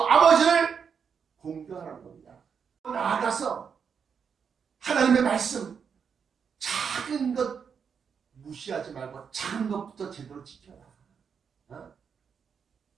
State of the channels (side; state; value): left; quieter; 6.6 dB